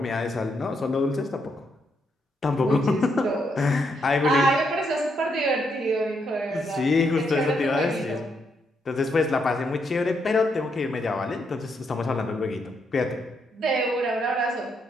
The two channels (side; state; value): both; normal; correlation 0.78